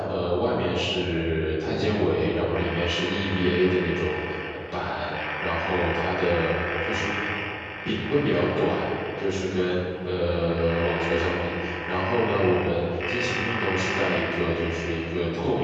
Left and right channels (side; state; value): both; identical; correlation 1.00